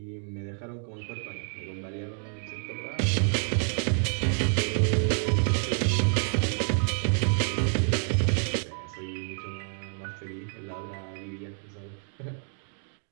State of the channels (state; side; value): silent; left; 55 dB below the other